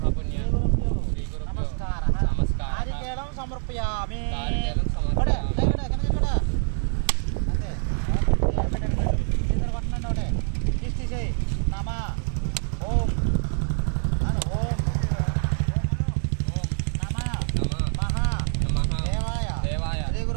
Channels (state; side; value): silent; left; digital silence